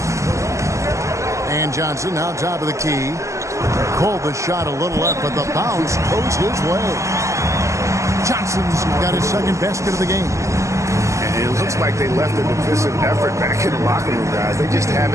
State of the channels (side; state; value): left; late; 0.15 ms